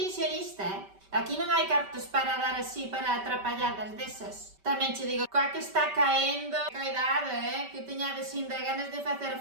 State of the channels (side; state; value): left; late; 5.2 ms